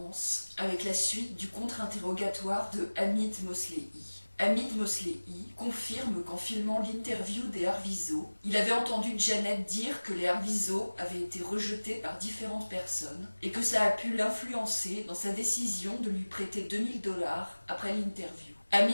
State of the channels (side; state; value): both; inverted; correlation -1.00